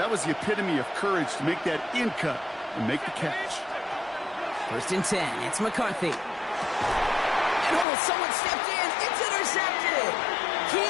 was the epitome of courage to make that in cut and make the catch. First and 10, it's McCarthy. And someone stepped in. It's intercepted.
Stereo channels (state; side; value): drops out; right; at 7.9 s